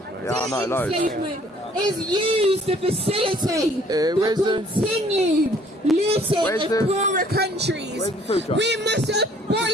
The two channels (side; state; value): both; normal; correlation 0.59